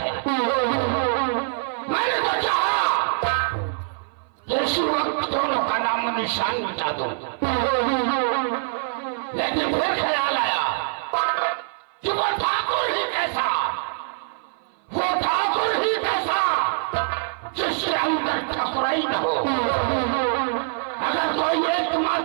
मैंने तो चाहा कि इसी वक्त दोनों का नामो निशान मिटा दूं, लेकिन फिर ख्याल आया कि वो ठाकुर ही कैसा, वो ठाकुर ही कैसा जिसके अंदर ठकुराई न हो। अगर कोई एक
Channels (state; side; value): silent; left; 56 dB below the other